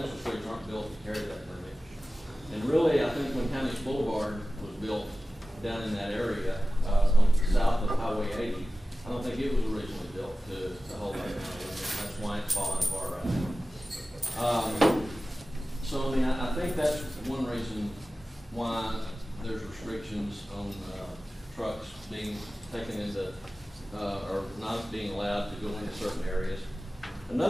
streets, aren't built to carry that limit. And really, I think when County Boulevard was built down in that area, south of Highway 80, I don't think it was originally built to hold that kind of limit. That's why it's falling apart right now. So, I mean, I think that's one reason why there's restrictions on trucks being taken into, or not being allowed to go into certain areas.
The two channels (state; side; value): normal; both; correlation 0.95